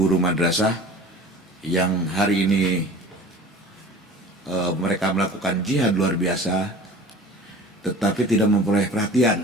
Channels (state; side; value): normal; both; correlation 0.42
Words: madrasah yang hari ini mereka melakukan jihad luar biasa, tetapi tidak memperoleh